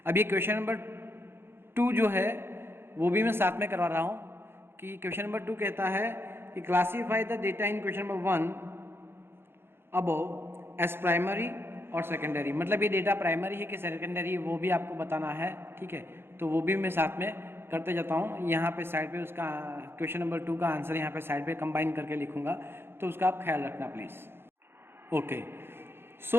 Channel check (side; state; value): left; late; 0.11 ms